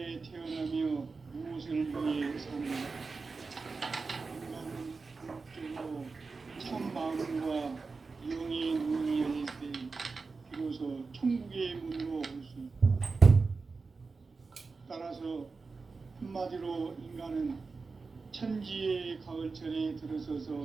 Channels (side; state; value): left; quieter; 4.3 dB